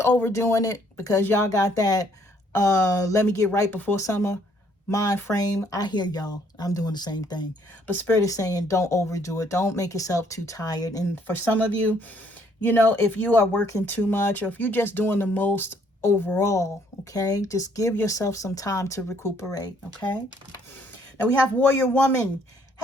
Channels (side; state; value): both; normal; correlation 0.65